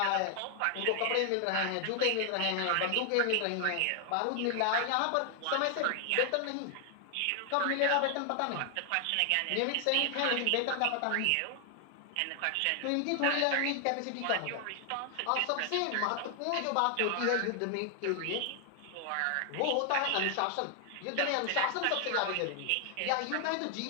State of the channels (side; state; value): both; different; correlation 0.00